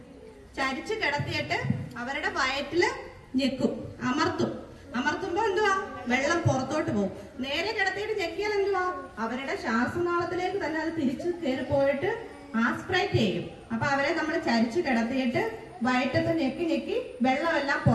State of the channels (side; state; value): both; identical; correlation 1.00